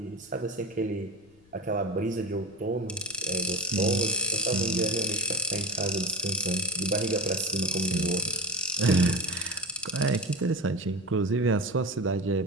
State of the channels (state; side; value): noise; left; rumble, 29 dB below the sound